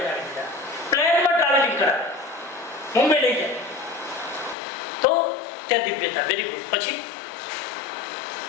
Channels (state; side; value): drops out; right; at 4.5 s